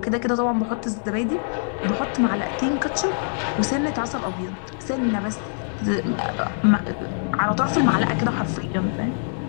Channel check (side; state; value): right; silent; digital silence